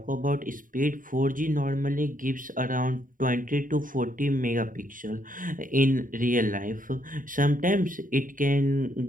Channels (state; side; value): late; left; 0.39 ms